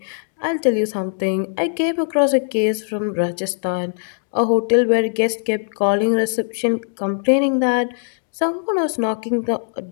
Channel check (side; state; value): right; silent; digital silence